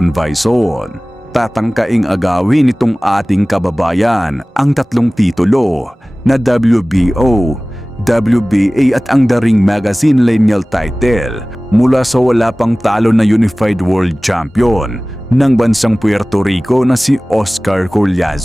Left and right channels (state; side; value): normal; both; correlation 0.98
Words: Vason. Tatangkaing agawin nitong ating kababayan ang tatlong titulo na WBO, WBA at ang The Ring Magazine Lineal title mula sa wala pang talo na Unified World Champion ng bansang Puerto Rico na si Oscar